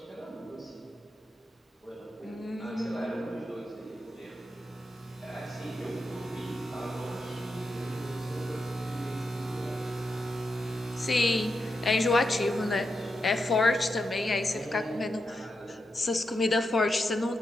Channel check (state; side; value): normal; both; correlation 0.86